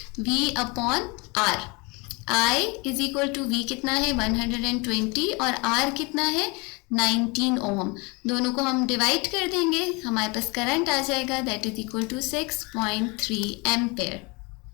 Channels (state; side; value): quieter; right; 28.2 dB